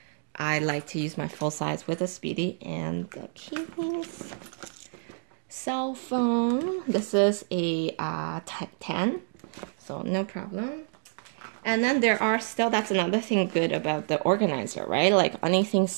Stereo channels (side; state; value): left; silent; 59 dB below the other